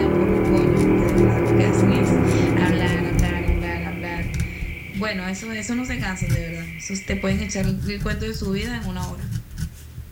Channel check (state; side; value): identical; both; correlation 1.00